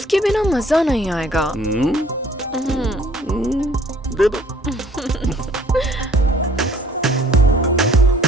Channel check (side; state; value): both; normal; correlation 0.58